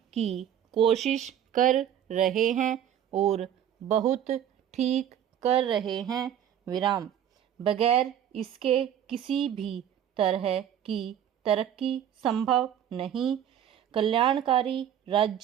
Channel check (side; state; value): left; quieter; 10.0 dB